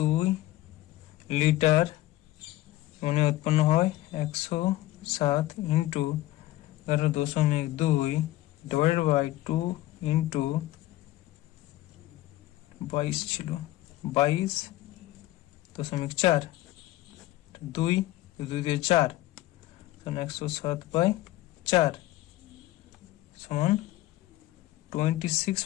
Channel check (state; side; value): quieter; right; 16.5 dB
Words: লিটার অ্যামোনিয়া উৎপন্ন হয় 107 ইন্টু 11.2 ডিভাইডেড বাই 2 ইন্টু 22 ছিল 22.4, 2 দিয়ে 4 107 বাই 4 সমান